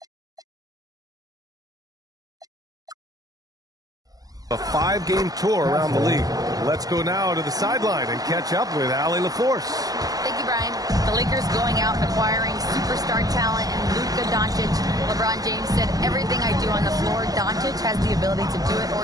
a 5-game tour around the league. Let's go now to the sideline and catch up with Allie LaForce. Thank you, Brian. The Lakers going out and acquiring superstar talent and Luka Doncic. LeBron James said, everything I do on the floor, Doncic has the ability to do it or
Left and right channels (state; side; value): late; left; 0.17 ms